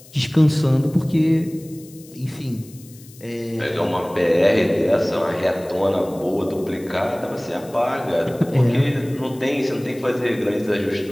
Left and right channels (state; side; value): noise; left; hiss, 22 dB below the sound